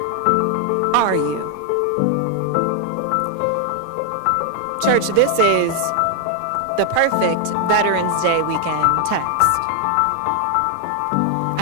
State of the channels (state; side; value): different; both; correlation 0.00